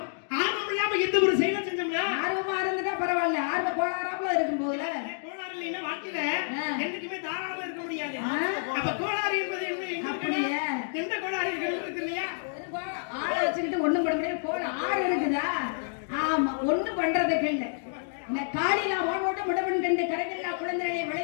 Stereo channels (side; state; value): right; silent; digital silence